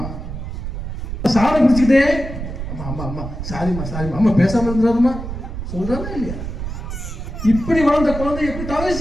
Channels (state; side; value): noise; right; rumble, 7 dB below the sound